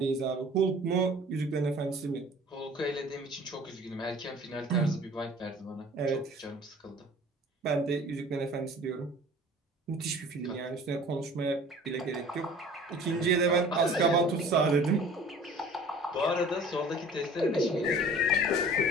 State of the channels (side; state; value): both; normal; correlation 0.47